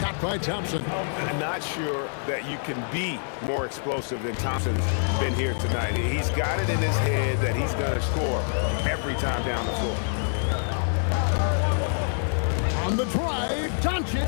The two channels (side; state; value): right; silent; digital silence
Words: by Thompson. Not sure that you can be more explosive than Thompson's been here tonight. He's got it in his head that he's going to score every time down the floor. On the drive, Doncic.